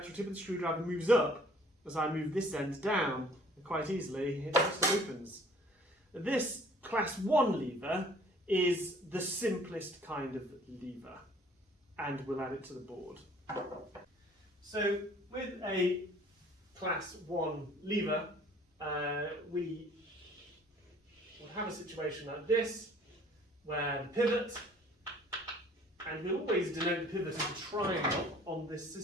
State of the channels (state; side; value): normal; both; correlation 0.54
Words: tip of the screwdriver moves up as I move this end down, and quite easily it just opens. This class 1 lever is the simplest kind of lever, and we'll add it to the board. So with a class 1 lever, we will have a situation like this, where the pivot, and we'll always denote the pivot as a triangle on this